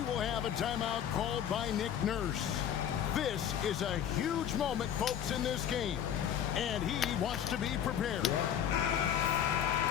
will have a timeout called by Nick Nurse. This is a huge moment, folks, in this game. And he wants to be prepared.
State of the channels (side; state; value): right; quieter; 9.5 dB